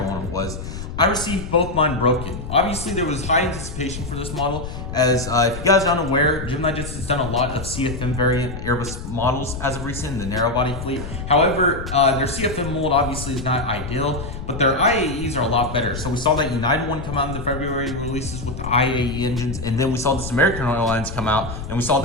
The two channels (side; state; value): left; noise; rumble, 8 dB below the sound